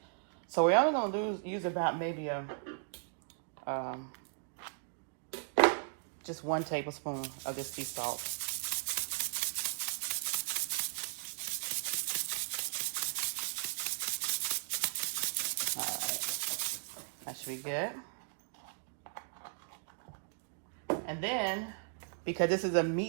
so we're only gonna use about maybe just 1 tablespoon of this sea salt. All right, that should be good. And then, because this is a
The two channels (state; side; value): silent; left; digital silence